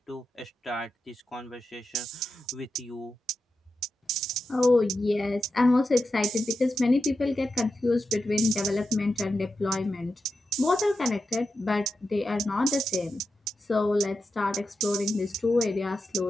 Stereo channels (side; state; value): both; normal; correlation 0.89